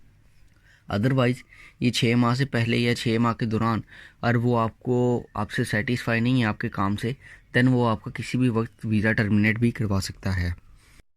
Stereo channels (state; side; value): identical; both; correlation 1.00